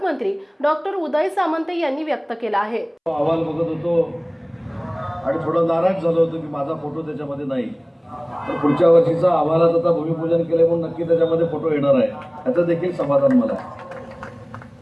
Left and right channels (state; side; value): identical; both; correlation 1.00